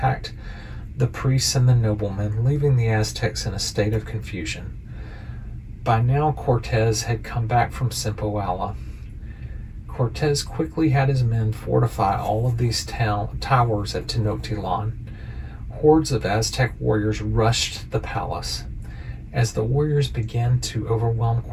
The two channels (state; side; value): identical; both; correlation 1.00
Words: the priests and the noblemen, leaving the Aztecs in a state of confusion. By now, Cortes had come back from Simpoala. Cortes quickly had his men fortify all of these towers at Tenochtitlan. Hordes of Aztec warriors rushed the palace. As the warriors began to overwhelm